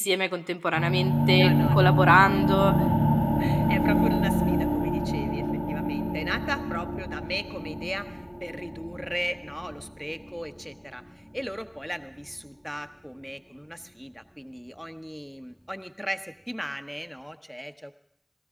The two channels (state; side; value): identical; both; correlation 1.00